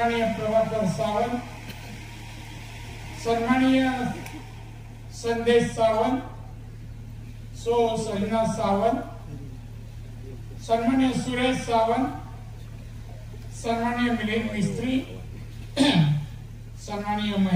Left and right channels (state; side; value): identical; both; correlation 1.00